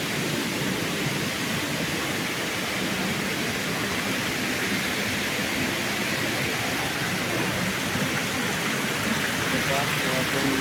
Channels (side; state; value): both; identical; correlation 1.00